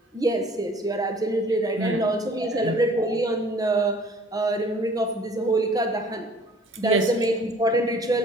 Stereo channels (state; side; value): normal; both; correlation 0.52